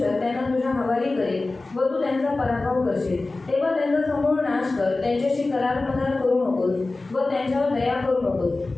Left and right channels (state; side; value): quieter; right; 3.3 dB